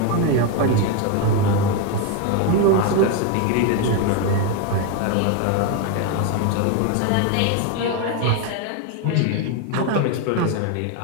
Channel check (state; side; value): different; both; correlation 0.02